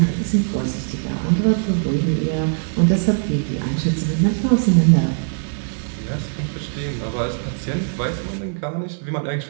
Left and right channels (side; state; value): left; silent; 57 dB below the other